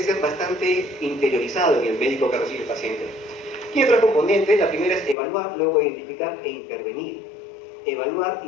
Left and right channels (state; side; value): drops out; right; at 5.2 s